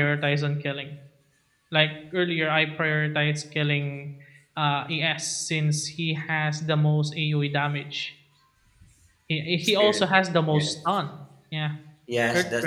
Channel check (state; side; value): identical; both; correlation 1.00